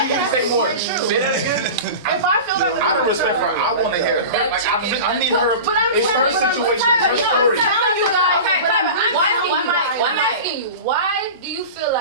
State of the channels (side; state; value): both; inverted; correlation -0.32